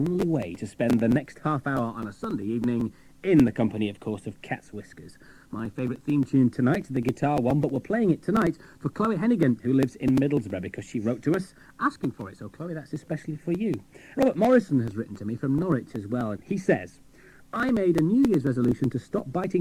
way to spend the next half hour on a Sunday evening in the company, of course, of Cat's Whiskers. My favourite theme tune tonight, the guitar one, but we're playing it tonight for Chloe Hennigan, who lives in Middlesbrough, because she wrote to us asking for it. So, Chloe, that's especially for you. Robert Morrison has written to me from Norwich as well. He says, I made a New Year's resolution to stop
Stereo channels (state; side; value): identical; both; correlation 1.00